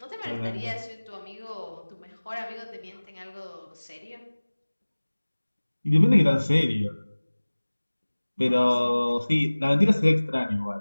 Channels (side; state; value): both; inverted; correlation -1.00